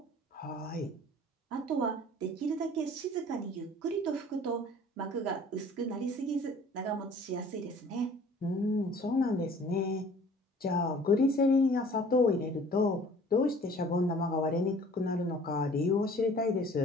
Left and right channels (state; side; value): normal; both; correlation 0.50